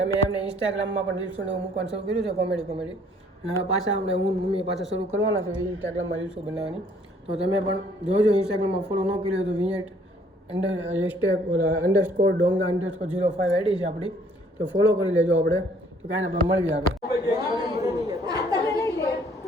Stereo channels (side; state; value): both; normal; correlation 0.60